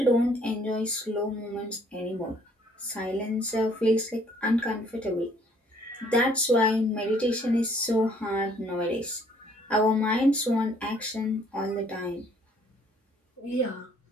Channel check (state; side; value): normal; both; correlation 0.62